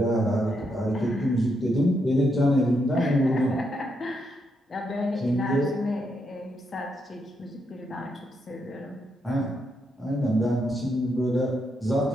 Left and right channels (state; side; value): normal; both; correlation 0.80